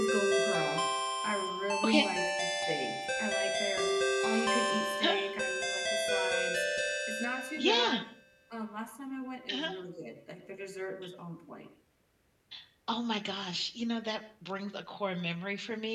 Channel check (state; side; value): identical; both; correlation 1.00